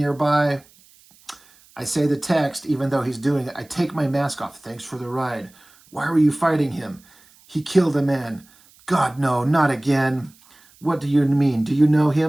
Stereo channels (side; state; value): right; noise; hiss, 29 dB below the sound